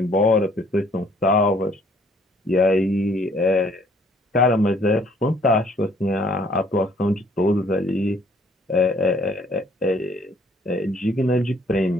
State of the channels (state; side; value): normal; both; correlation 0.62